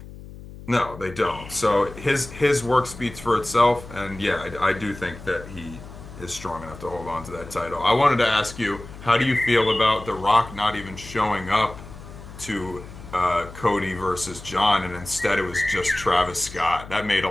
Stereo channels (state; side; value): noise; left; hum, 15 dB below the sound